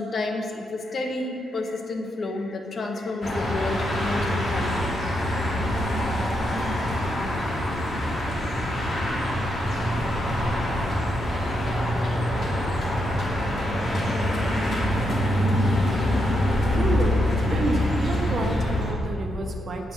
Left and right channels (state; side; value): normal; both; correlation 0.81